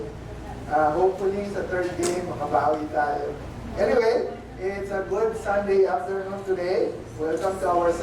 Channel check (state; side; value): identical; both; correlation 1.00